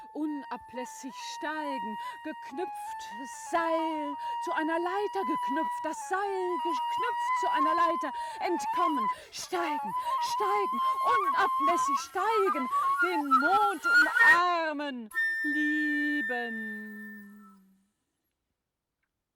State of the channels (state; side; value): identical; both; correlation 1.00